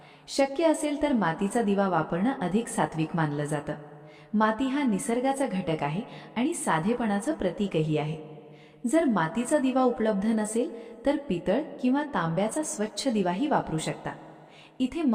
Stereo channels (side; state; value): both; identical; correlation 1.00